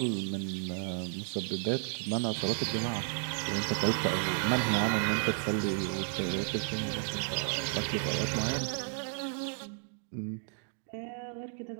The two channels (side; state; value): left; silent; digital silence